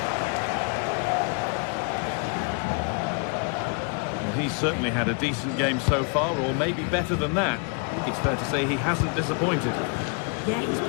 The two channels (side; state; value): right; quieter; 36.6 dB